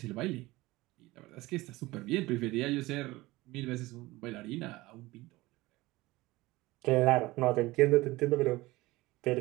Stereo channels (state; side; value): quieter; left; 19.9 dB